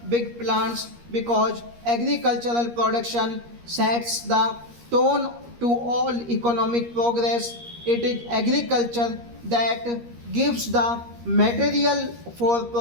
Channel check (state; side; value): late; left; 13 ms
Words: big plants, because agricultural production sets the tone to all economic progress. It is agriculture that gives the material for